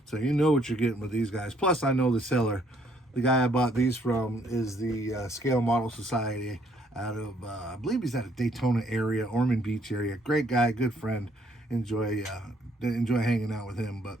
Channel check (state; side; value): normal; both; correlation 0.67